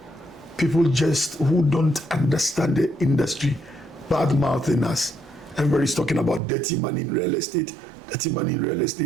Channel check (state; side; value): drops out; left; at 6.4 s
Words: people just who don't understand the industry, bad mouthing us. Everybody's talking about dirty money in real estate, dirty money in real